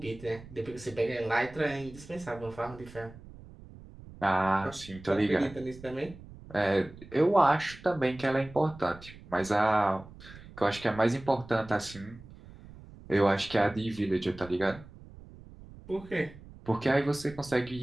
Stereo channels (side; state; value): right; noise; rumble, 18 dB below the sound